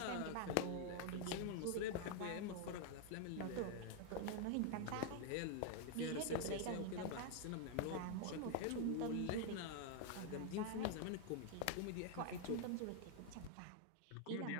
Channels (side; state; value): both; different; correlation 0.00